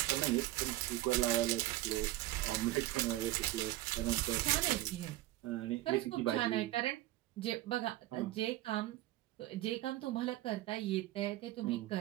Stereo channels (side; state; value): left; quieter; 16.3 dB